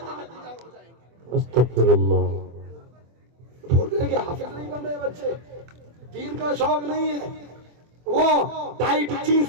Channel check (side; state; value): left; late; 24 ms